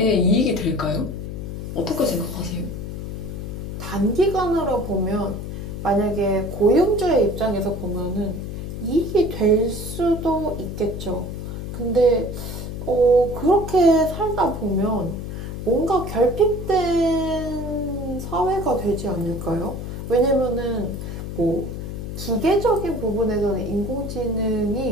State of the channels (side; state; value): left; noise; hum, 7 dB below the sound